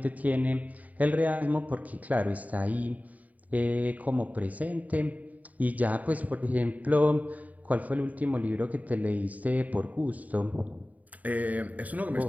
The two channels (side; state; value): left; late; 0.073 ms